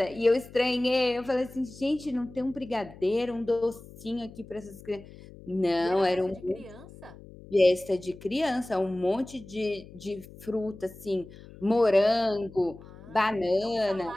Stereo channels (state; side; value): noise; left; hum, 18 dB below the sound